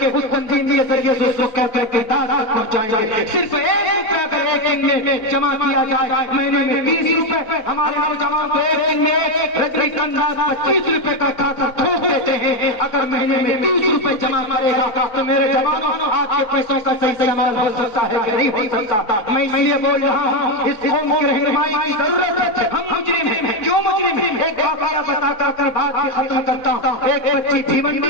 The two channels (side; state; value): right; late; 4.0 ms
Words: اس تنظیم کے ذریعے سے اس کو کہتے کہ دادا پہنچائیں گے۔ صرف ایک روپے اگر ایک دن میں جمع کیا جائے، مہینے میں 30 روپے، ہمارے نوجوان کو ایک دن میں رجنی کنڈا 25 روپے کا کھاتا ٹھوک دیتے ہیں۔ اگر مہینے میں 30 روپے جمع کرے گا تو میرے جوانوں آپ کے پیسوں کا صحیح استعمال ہو سکتا ہے کہ نہیں ہو سکتا؟ میں اس لیے بول رہا ہوں اس قوم کی رہنمائی کی ضرورت ہے۔ ہم مجرم ہیں، کیوں مجرم ہیں؟ ایک واقعہ بتا کر بات کی ختم کرتا ہوں۔ ایک بچی